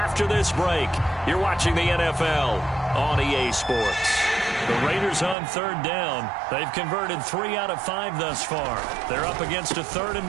this break. You're watching the NFL on EA Sports. The Raiders on third down. They've converted 3 out of 5 thus far. They're up against a 3rd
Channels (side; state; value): left; drops out; at 5.4 s